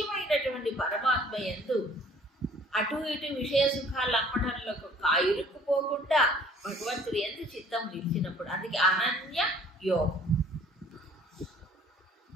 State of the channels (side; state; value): both; normal; correlation 0.54